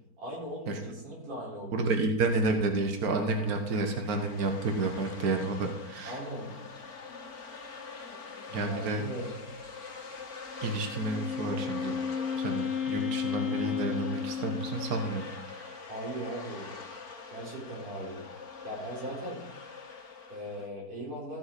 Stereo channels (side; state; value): left; late; 4.4 ms